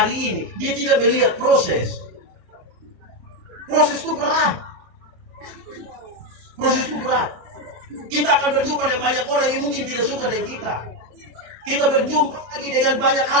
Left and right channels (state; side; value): late; left; 27 ms